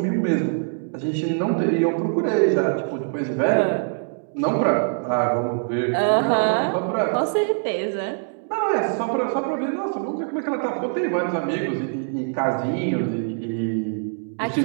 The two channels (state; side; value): silent; left; digital silence